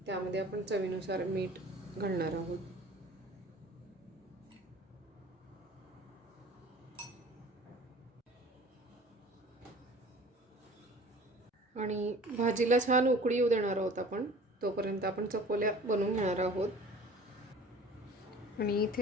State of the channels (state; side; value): normal; both; correlation 0.46